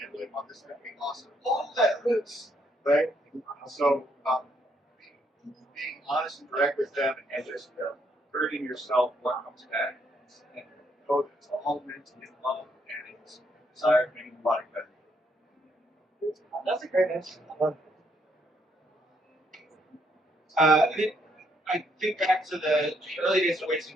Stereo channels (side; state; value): both; normal; correlation 0.72